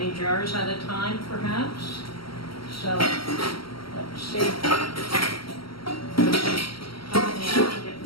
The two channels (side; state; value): right; late; 0.74 ms